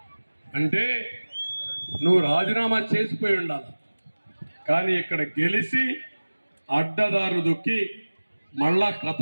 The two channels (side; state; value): both; inverted; correlation -1.00